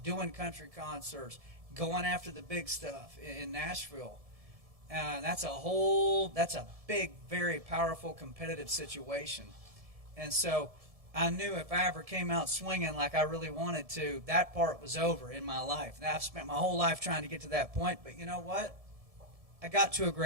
country concerts, going after the big stuff in Nashville. That's a big, very powerful, competitive situation. And so I knew if I ever came out swinging like I really wanted to, that part was over in my life. Now, I've spent my whole life trying to get to that point, but you know what? I got to a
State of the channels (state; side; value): late; left; 1.7 ms